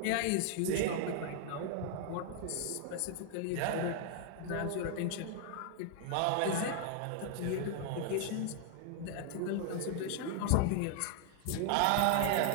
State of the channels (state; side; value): different; both; correlation 0.00